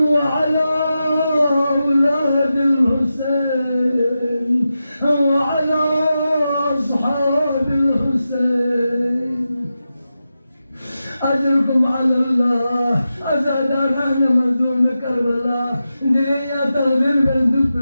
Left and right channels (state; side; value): inverted; both; correlation -0.91